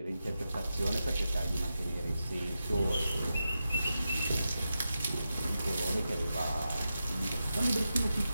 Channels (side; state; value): both; inverted; correlation -0.90